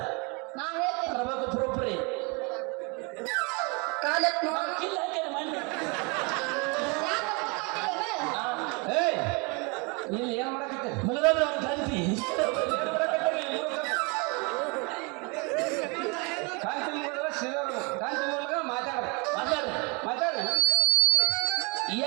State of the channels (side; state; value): left; quieter; 30.8 dB